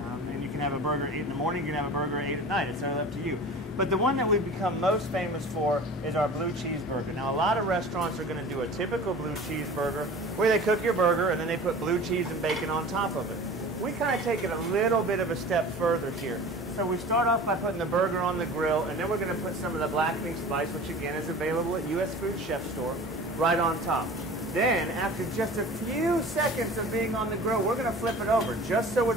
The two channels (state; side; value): normal; both; correlation 0.40